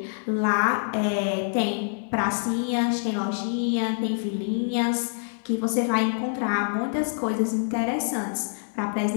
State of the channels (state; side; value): silent; right; digital silence